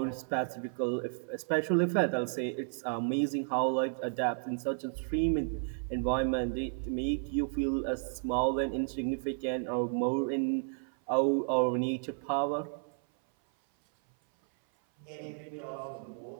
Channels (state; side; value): silent; left; 56 dB below the other